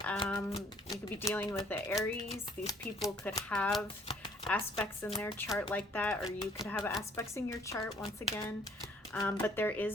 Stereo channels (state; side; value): normal; both; correlation 0.60